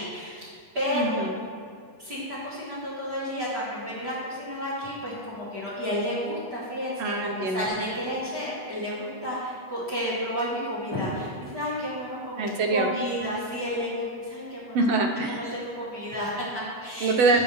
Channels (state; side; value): late; left; 8.1 ms